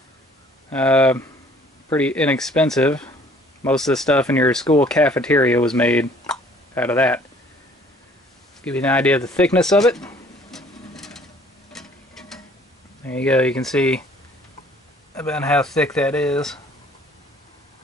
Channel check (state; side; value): normal; both; correlation 0.56